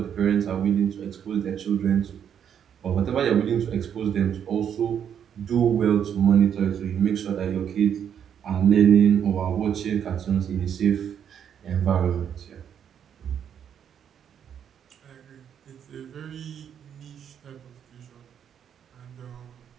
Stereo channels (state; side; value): quieter; left; 8.6 dB